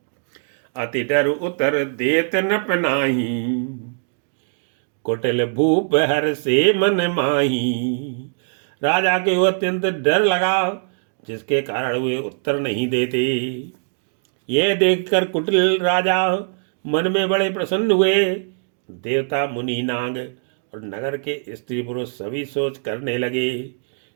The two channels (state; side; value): silent; left; digital silence